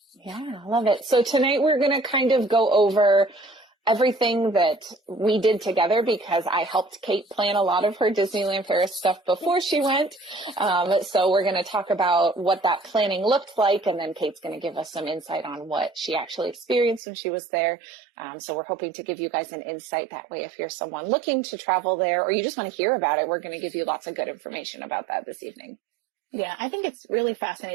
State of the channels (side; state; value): left; drops out; at 17.0 s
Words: Yeah, I love it. So tonight we're going to kind of go over everything that we did together because I helped Kate plan a lot of her Disneyland Paris stuff before she went. So we're going to talk about what that planning looked like, and then Kate's going to give us some insight on what she actually experienced when she was there. So we're hoping to give you guys an insight that way if you're someone looking to travel there or you just want to hear about it. We're going to give you lots of good information about that this evening. Yeah, I think it's really